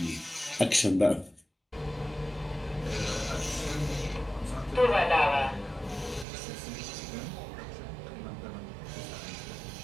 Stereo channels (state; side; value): drops out; left; at 6.2 s